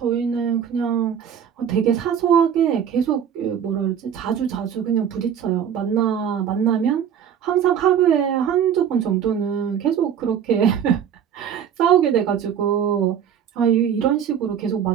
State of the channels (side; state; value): left; quieter; 8.5 dB